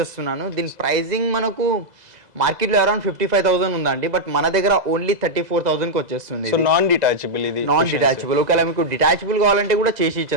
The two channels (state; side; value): late; left; 2.0 ms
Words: దీని ప్రైజింగ్ మనకు మార్కెట్ లో అరౌండ్ 55,000 ఉందండి, బట్ మన దగ్గర ఓన్లీ 34,000 కి వచ్చేస్తుంది. సో నాన్ డిటాచబుల్, ఇది నాన్ డిటాచబుల్. ఒకవేళ మీకు డిటాచబుల్ కావాలంటే కూడా చేసి